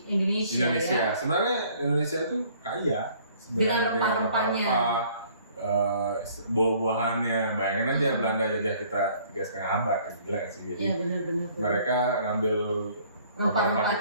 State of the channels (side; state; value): both; inverted; correlation -0.58